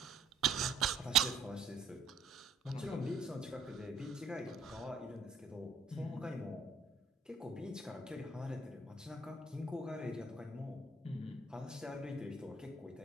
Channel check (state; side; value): quieter; left; 3.6 dB